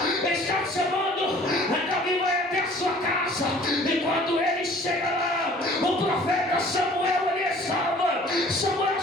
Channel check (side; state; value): both; normal; correlation 0.51